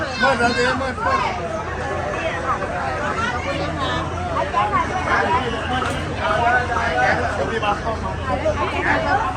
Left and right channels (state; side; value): identical; both; correlation 1.00